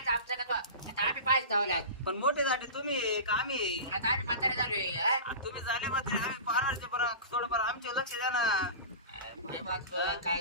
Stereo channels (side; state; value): both; inverted; correlation -0.31